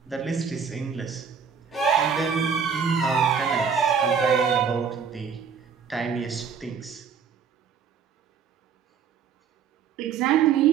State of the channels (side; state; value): left; quieter; 6.6 dB